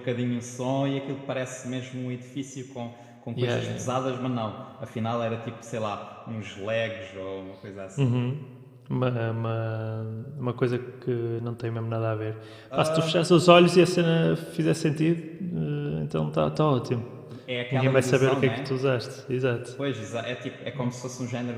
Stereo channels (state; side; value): identical; both; correlation 1.00